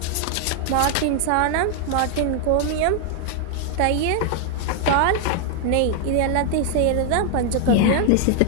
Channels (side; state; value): both; different; correlation 0.00